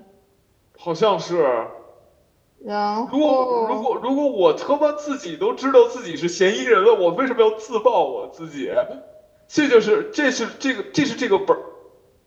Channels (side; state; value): both; identical; correlation 1.00